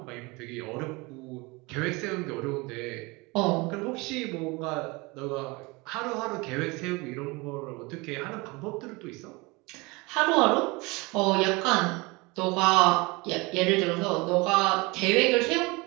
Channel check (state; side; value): quieter; left; 25.2 dB